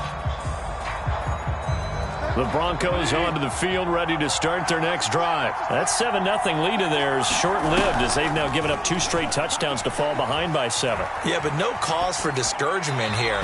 The Broncos onto the field, ready to start their next drive. That 7-0 lead of theirs short-lived as they've now given up 2 straight touchdowns to fall behind by 7. Yeah, but no cause for discouragement here.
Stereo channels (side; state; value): both; identical; correlation 1.00